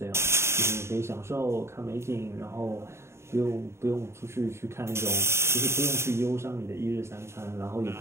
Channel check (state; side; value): late; left; 0.13 ms